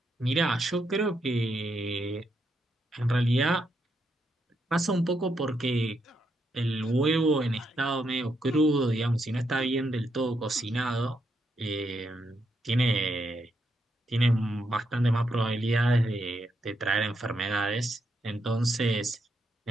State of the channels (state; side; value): normal; both; correlation 0.80